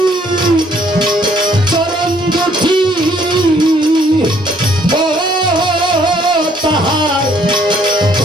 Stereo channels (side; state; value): both; normal; correlation 0.64